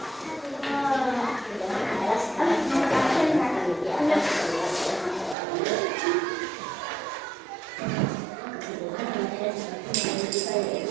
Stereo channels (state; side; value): drops out; left; at 5.4 s